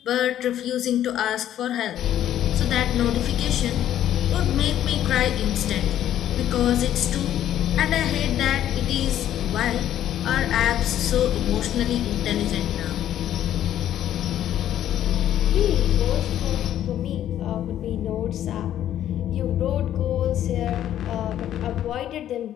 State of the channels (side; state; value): right; quieter; 11.5 dB